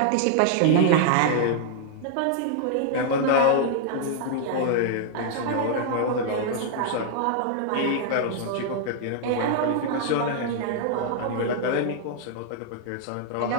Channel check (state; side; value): different; both; correlation -0.01